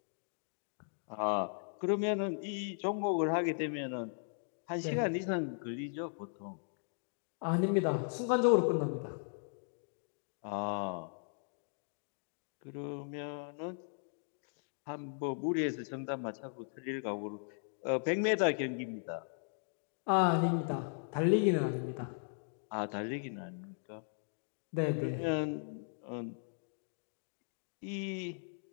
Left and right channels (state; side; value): silent; right; digital silence